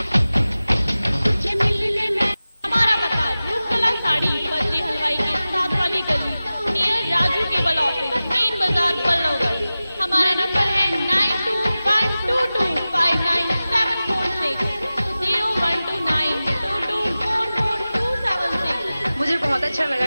हमारा पता रूपकला साड़ी बद्री हलवाई के साथ वाली गली near Raju cable office, main बाजार बल्लभगढ़। हमारा नंबर है 9212259746 012922444276। मुझे बहुत अच्छा लगा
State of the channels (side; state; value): both; inverted; correlation -0.96